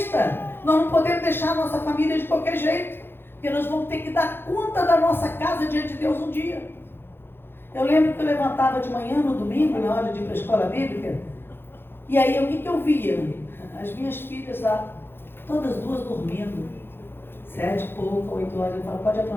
Nós não podemos deixar a nossa família de qualquer jeito, porque nós vamos ter que dar conta da nossa casa diante de Deus um dia. Eu lembro que eu levantava de manhã no domingo, na hora de ir para a escola bíblica, e aí o que eu via? As minhas filhas lá, todas duas dormindo, 7 e pouco, 8 horas, eu falo, pode ir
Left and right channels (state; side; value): late; right; 0.10 ms